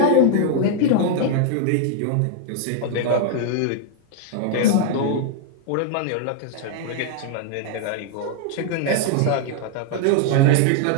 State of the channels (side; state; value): both; different; correlation 0.00